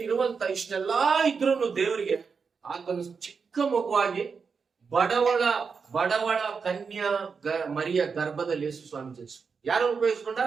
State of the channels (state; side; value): quieter; left; 5.5 dB